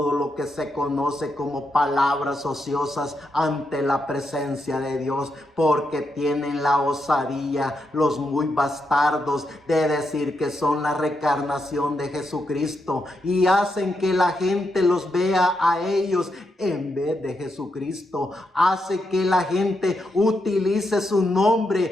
lo que se conoce como palabras ociosas ante la presencia de Dios, porque tienen la osadía, los muy bastardos, de decir que son la reencarnación de Jesucristo, y hacen que la gente los vea a ellos en vez de Jesucristo. Hace que la gente utilice su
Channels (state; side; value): normal; both; correlation 0.83